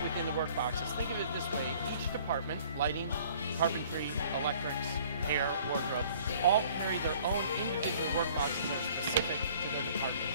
within the work boxes. Think of it this way: each department, lighting, carpentry, electrics, hair, wardrobe, all carry their own individual work boxes that are specific to their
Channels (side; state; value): both; inverted; correlation -0.54